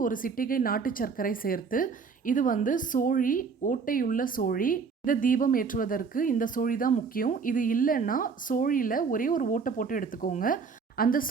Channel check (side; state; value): left; quieter; 5.4 dB